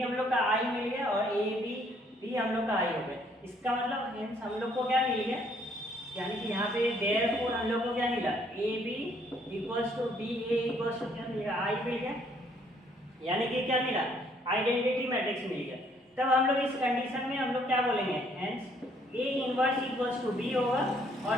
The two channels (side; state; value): both; normal; correlation 0.65